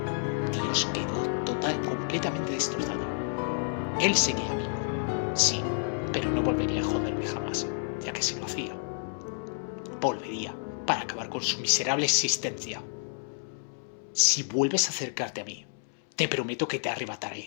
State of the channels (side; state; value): right; silent; 58 dB below the other